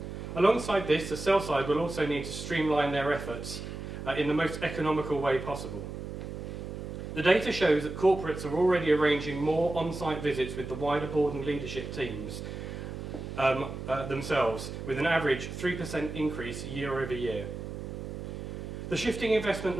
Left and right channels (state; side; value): noise; right; hum, 8 dB below the sound